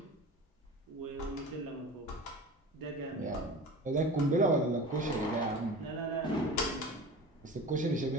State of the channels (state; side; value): normal; both; correlation 0.35